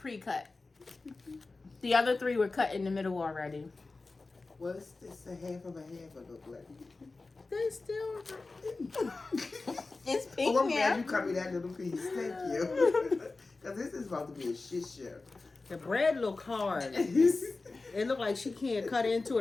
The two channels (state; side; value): quieter; right; 3.6 dB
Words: The other 3 were cut in the middle already. Well, it's a half of a half of the like. They still. It's pink Oh, I'm glad now. you cut me that little piece. Thank you. Because this is about to be a shit show. The bread look hard. It look like she can't cut into